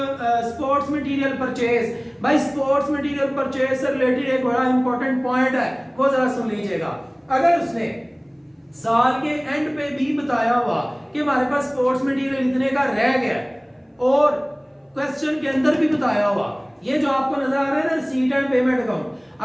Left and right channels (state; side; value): identical; both; correlation 1.00